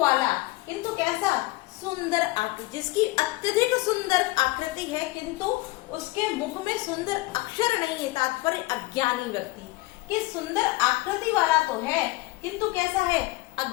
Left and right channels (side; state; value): right; quieter; 20.6 dB